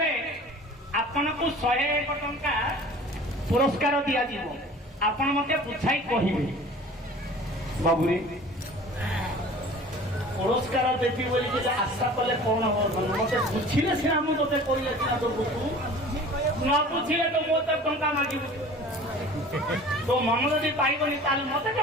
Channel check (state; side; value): normal; both; correlation 0.44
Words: ଆପଣଙ୍କୁ 101 ଟଙ୍କା ପୁରସ୍କାର ଦିଆଯିବ। ଆପଣ ମତେ ବୁଝାଇ କହିବେ। ବାବୁରେ ପୁରସ୍କାର ଦେବି ବୋଲି ଆଶା କଲେ କଣ ହବ? ମତେ ବୁଝିଲେ ସିନା ମୁଁ ତତେ କହିଲେ ସିନା ତ ବୁଝୁ, ନ ବୁଝିଲେ ତ ମୋ ତ ଟଙ୍କା ମାଗିବୁ। ତୋ ମନ ଯଦି ପାଇବନି ତାହେଲେ ମତେ